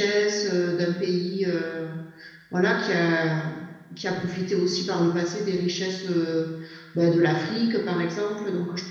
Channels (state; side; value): identical; both; correlation 1.00